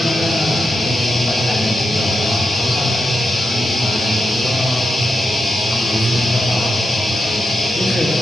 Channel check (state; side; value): normal; both; correlation 0.87